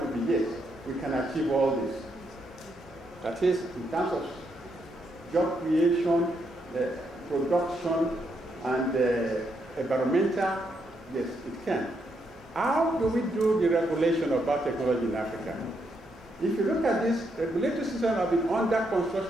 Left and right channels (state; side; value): normal; both; correlation 0.78